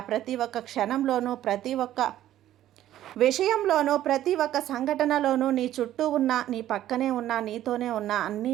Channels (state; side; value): quieter; left; 12.8 dB